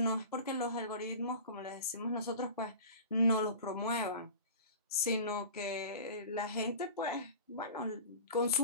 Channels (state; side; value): inverted; both; correlation -0.37